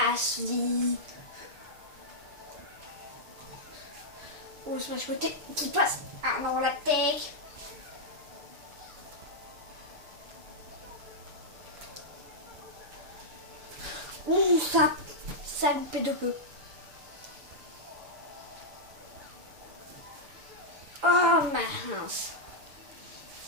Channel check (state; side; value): late; left; 7.1 ms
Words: vie. Oh, le smash côté qui passe. Ah non, la tech. Ouh, ça loupé de peu. Oh mince.